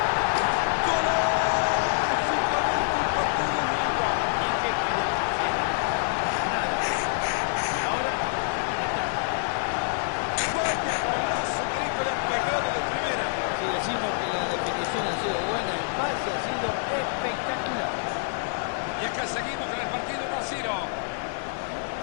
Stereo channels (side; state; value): right; silent; digital silence